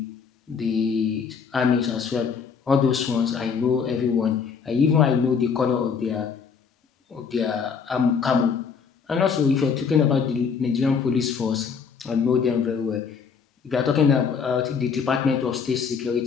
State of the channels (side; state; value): right; quieter; 6.1 dB